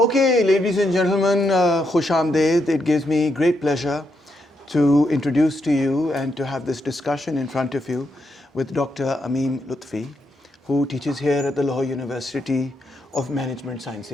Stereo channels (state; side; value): normal; both; correlation 0.80